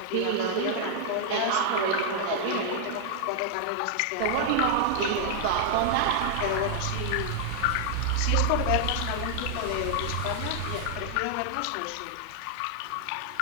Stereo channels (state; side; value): different; both; correlation 0.00